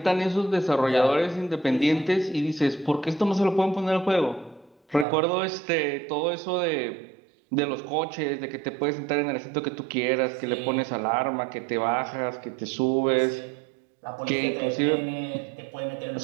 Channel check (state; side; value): drops out; left; at 5.1 s